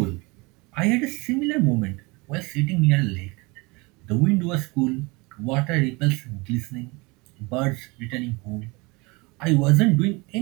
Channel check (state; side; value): quieter; left; 26.1 dB